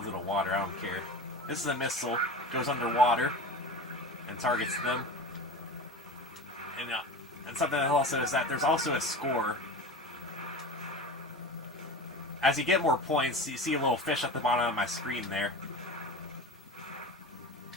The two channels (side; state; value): both; normal; correlation 0.32